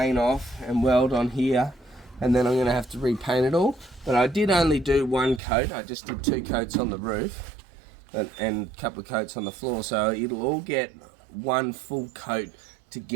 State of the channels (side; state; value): left; drops out; at 5.4 s